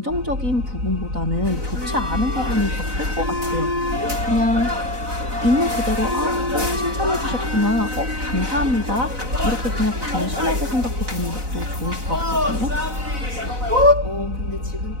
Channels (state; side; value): late; left; 4.0 ms